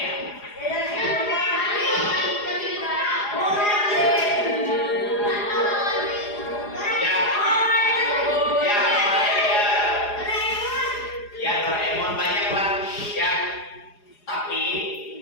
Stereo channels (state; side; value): late; right; 4.8 ms